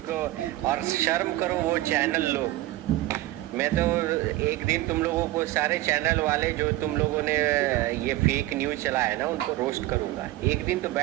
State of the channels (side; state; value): left; quieter; 16.7 dB